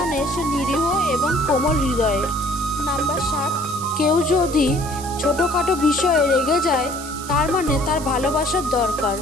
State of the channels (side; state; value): right; noise; hiss, 13 dB below the sound